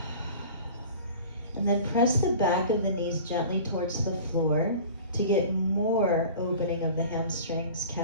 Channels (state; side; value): inverted; both; correlation -0.41